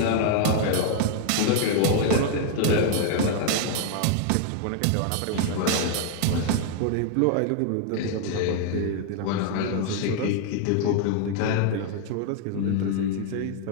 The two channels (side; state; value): both; different; correlation 0.00